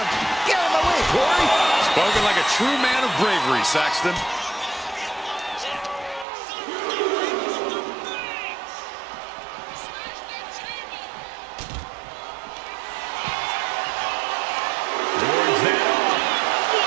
Get out of my way, Corey! Spoken like a true man of bravery, Saxton.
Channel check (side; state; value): left; drops out; at 6.2 s